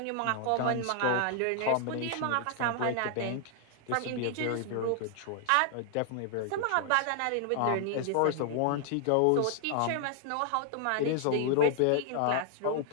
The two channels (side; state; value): both; different; correlation 0.00